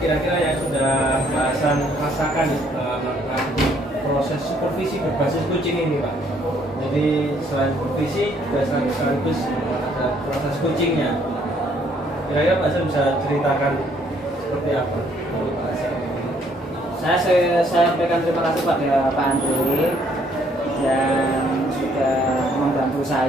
yang sudah Pak Hasan rasakan melakukan proses supervisi berbasis kucing ini Pak? Jadi selain supervisi juga sekaligus ada proses kucingnya. Kira-kira Pak Hasan bisa ceritakan seperti apa menurut Pak Hasan? Saya sampaikan terima kasih pada Pak Andre yang sudah membantu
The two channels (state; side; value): normal; both; correlation 0.65